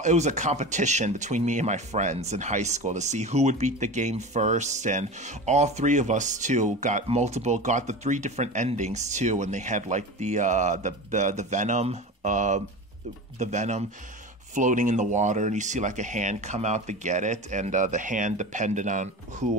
was a competition between me and my friends in high school to see who would beat the game first, and all three of us too got the 3 different endings too, and they had like the venom floating in the water, and you see like a hand come out to get it, and the hand depended on who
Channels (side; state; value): both; normal; correlation 0.30